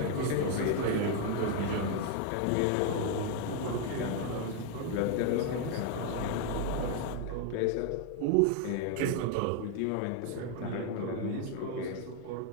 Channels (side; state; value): both; different; correlation 0.01